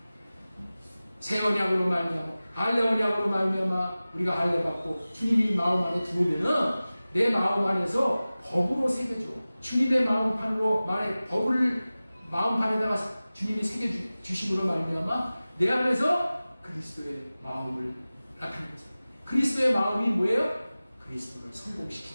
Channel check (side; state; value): both; inverted; correlation -0.97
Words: 새 언약으로 말미암아, 할례 언약으로 말미암아 우리가 할례 받고 주님이 마음 안에 들어오면은 내 마음 안에서 법으로 새겨줘. 주님의 마음판으로 법을 마음판에다가 주님이 새겨주심으로 말미암아 내 안에서 그리스도의 마음을 나타내면서, 그리스도의 마음이 뭐예요? 그리스도를